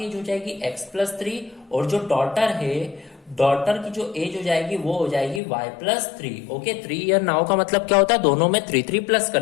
एज हो जाएगी x+3 और जो डॉटर है, डॉटर की जो एज हो जाएगी वो हो जाएगी y+3। ओके, 3 ईयर नाउ का मतलब क्या होता है, दोनों में 3 प्लस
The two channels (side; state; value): right; drops out; at 5.4 s